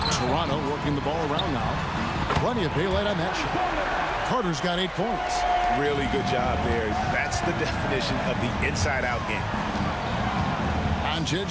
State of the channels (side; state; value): both; identical; correlation 1.00